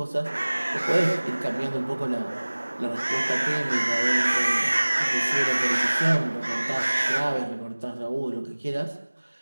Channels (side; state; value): both; inverted; correlation -1.00